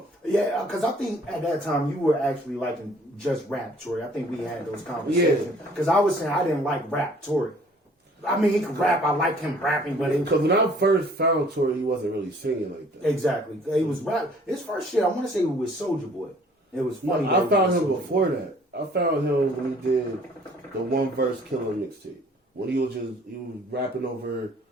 Yeah, because I think at that time you were actually liking just rap, Tory. I think we had those conversations. Because I was saying I didn't like rap, Tory. I mean, he could rap. I liked him rapping, but it Because when I first found Tory, he wasn't really singing like that. exactly. He was rap. His first shit, I want to say, was Soulja Boy. It was funny. I that found he him was Soulja before that. I found him when he did the One Verse Killer mixtape. When he was rapping over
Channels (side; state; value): both; normal; correlation 0.56